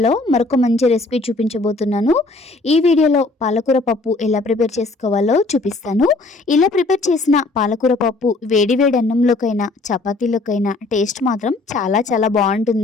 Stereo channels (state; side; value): quieter; right; 3.3 dB